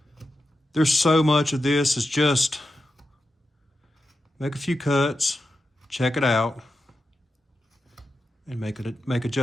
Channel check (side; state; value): both; normal; correlation 0.89